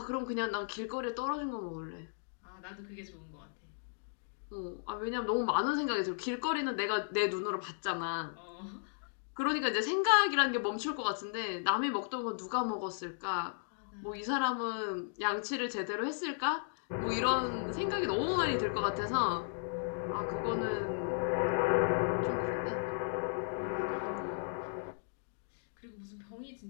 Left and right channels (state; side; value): silent; right; digital silence